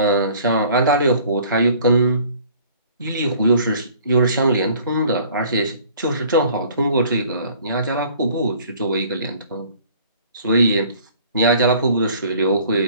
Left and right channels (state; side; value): inverted; both; correlation -0.53